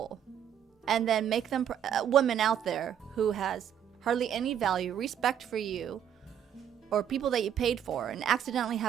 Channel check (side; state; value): left; quieter; 9.3 dB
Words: and then make them women out there who has hardly any value, respect for you, or people that you paid for, and accidentally